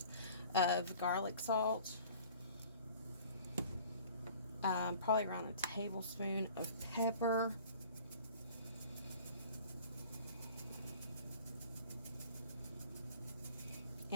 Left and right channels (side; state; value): both; inverted; correlation -0.48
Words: of garlic salt, probably around a tablespoon of pepper,